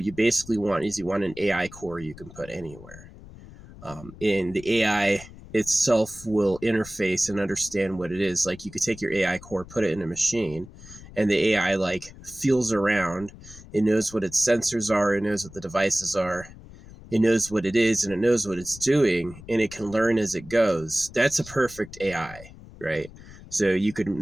you basically want is you want an AI core you can put anywhere. And the AI itself will interface and understand what it is. Like you could take your AI core, put it in a machine, and the AI like feels around. It knows what its sensors are. It knows what the devices are. It knows what it is, and it knows what it's doing, and it can learn as it goes. That's a perfect AI, right? So you could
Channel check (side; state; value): left; noise; rumble, 18 dB below the sound